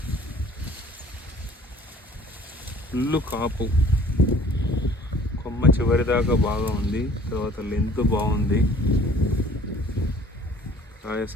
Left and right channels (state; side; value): normal; both; correlation 0.52